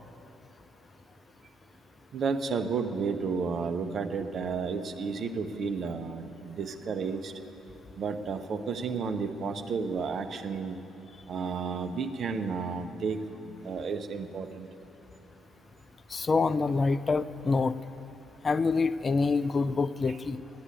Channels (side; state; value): both; normal; correlation 0.78